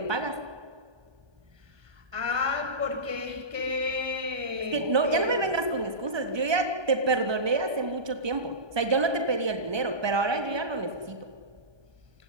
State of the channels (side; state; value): left; late; 1.2 ms